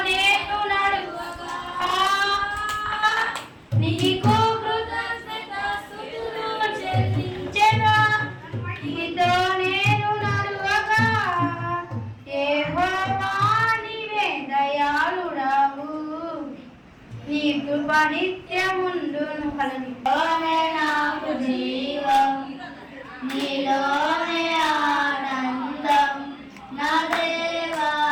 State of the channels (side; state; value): both; identical; correlation 1.00